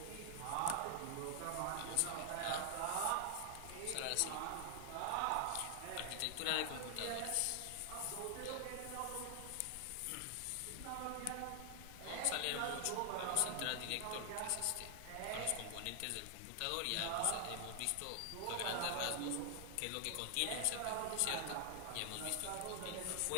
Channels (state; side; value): different; both; correlation 0.00